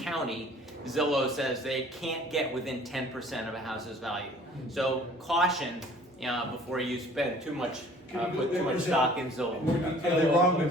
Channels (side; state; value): both; normal; correlation 0.52